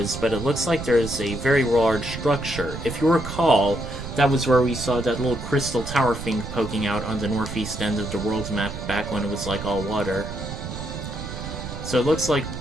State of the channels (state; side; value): noise; right; rumble, 8 dB below the sound